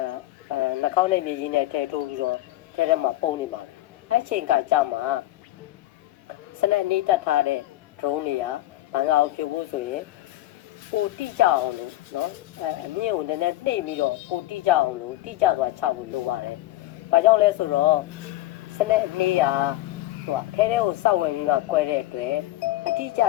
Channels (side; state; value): right; quieter; 15.9 dB